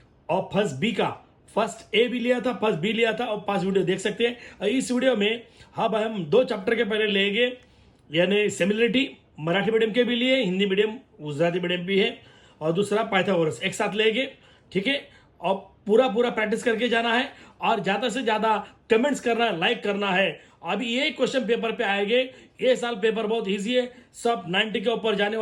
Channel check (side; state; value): both; identical; correlation 1.00